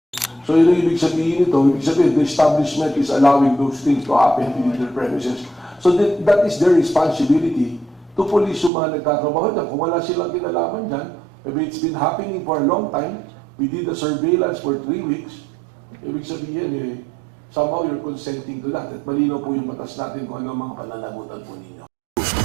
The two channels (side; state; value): left; drops out; at 8.7 s